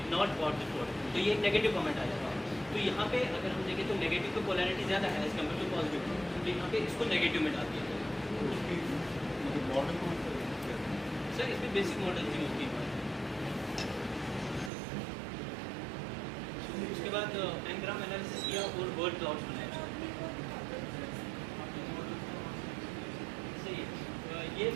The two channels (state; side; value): drops out; left; at 14.7 s